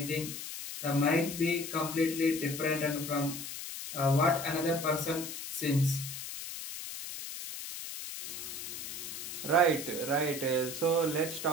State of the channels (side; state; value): left; noise; hiss, 8 dB below the sound